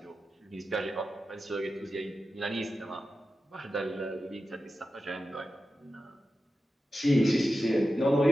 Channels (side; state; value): both; normal; correlation 0.92